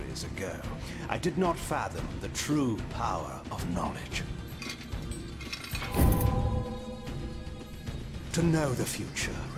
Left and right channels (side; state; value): both; identical; correlation 1.00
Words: ago, I did not fathom the true power of knowledge. To know the future,